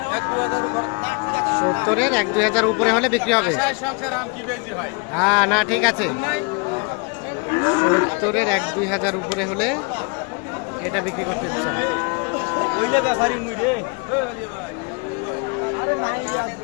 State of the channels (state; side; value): quieter; right; 32.4 dB